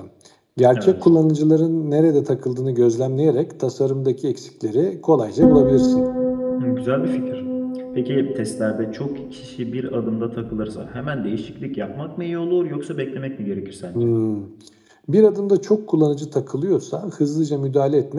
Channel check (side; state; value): both; identical; correlation 1.00